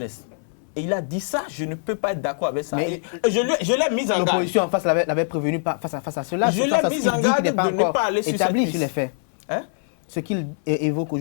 Et il a dit ça, je ne peux pas être d'accord avec ça. Mais Je l'ai mis en garde. L'opposition en face l'avait prévenu face à cela. Je l'ai face à ce mis qu'il en dit garde qui n'est pas de ne encore pas aller sur établi cette sur les piste. faits. Hein? Ce qu'il évoque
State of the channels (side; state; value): right; silent; 59 dB below the other